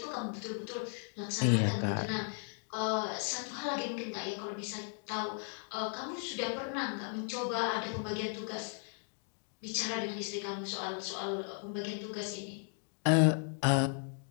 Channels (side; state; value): right; silent; 54 dB below the other